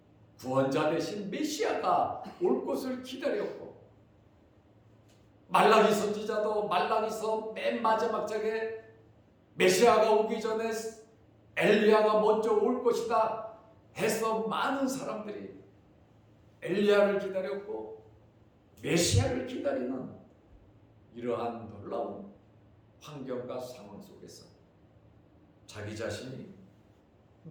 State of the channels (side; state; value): both; identical; correlation 1.00